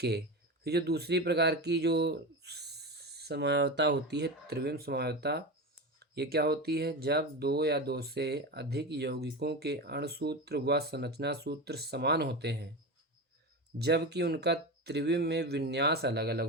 फिर जो दूसरी प्रकार की जो समवायवता होती है, त्रिविम समवायवता, ये क्या होती है? जब दो या दो से अधिक यौगिकों के अणुसूत्र व संरचना सूत्र समान होते हैं, जबकि उनका त्रिविम में विन्यास अलग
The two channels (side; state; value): both; normal; correlation 0.22